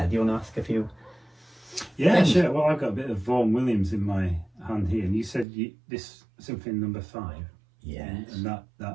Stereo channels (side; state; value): left; drops out; at 5.5 s